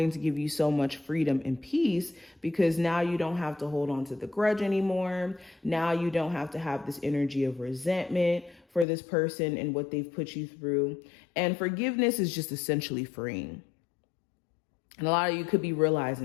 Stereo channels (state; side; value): drops out; right; at 8.8 s